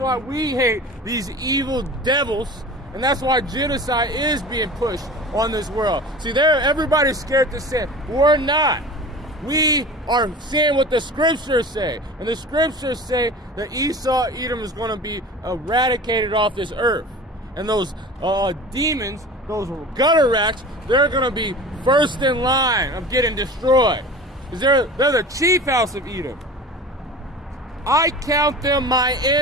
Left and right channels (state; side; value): normal; both; correlation 0.37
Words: we hate these evil devils, and that's why genocide is being pushed on this world. See, everybody's scared to sin. We're not. We are saying what the scriptures say, and the scriptures say that Esau, Edom is going to be eradicated off this earth, and those demons, those gutter rats, they're going to be first in line of getting destroyed. They're the chief house of Edom. I count them my